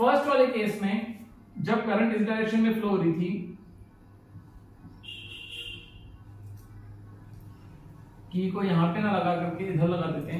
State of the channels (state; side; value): identical; both; correlation 1.00